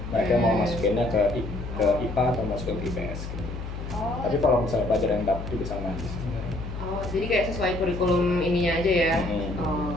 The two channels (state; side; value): noise; left; hum, 8 dB below the sound